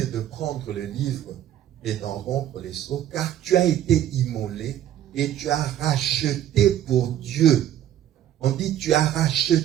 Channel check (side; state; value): left; quieter; 11.4 dB